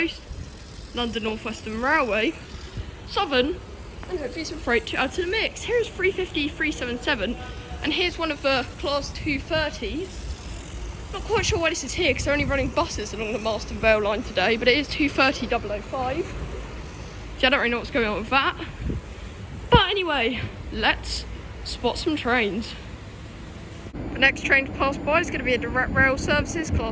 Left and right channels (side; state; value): both; identical; correlation 1.00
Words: London North Western Railway, Southern, and hopefully some freight to add to the mix. Here's 350 377, and here's one of the Class 230s. Not quite sure why this is here because they're only running buses along the Marston Vale line today, but it is 230 005. So I don't really know what's going on with that. But anyway, let's spot some trains. The next train to pass by is going to be a direct rail services